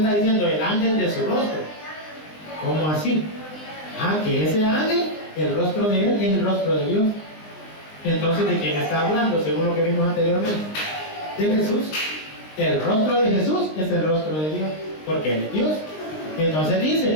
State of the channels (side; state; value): right; late; 19 ms